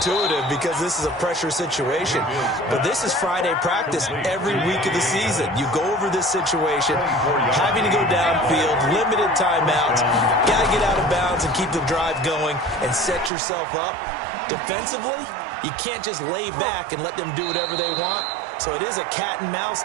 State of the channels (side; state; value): left; drops out; at 13.3 s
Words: because this is a pressure situation. But this is Friday practice every week of the season. You go over this situation, having to go downfield, limited timeouts, got to get out of bounds and keep the drive going and set yourself up. Defensively, you can't just lay back and let them do whatever they want. So it is a cat and mouse